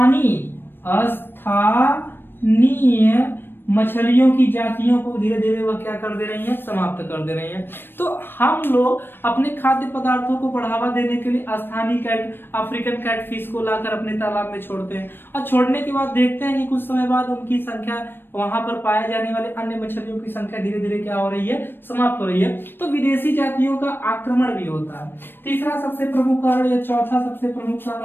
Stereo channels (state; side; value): late; right; 0.098 ms